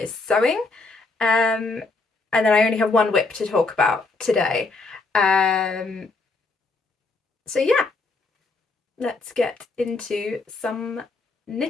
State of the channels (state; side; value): quieter; right; 3.6 dB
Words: sewing. And then I only have 1 whip to talk about today. So yeah, let's get into some